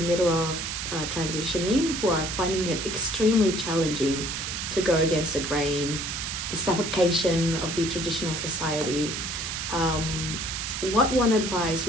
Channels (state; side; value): noise; right; hiss, 4 dB below the sound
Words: middle of transitioning, who are finding it extremely challenging to go against the grain, the suffocation of the traditional society, what one advice